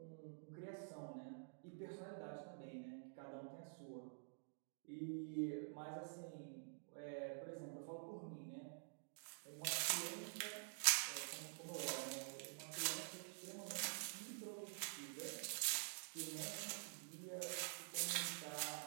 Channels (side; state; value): left; silent; digital silence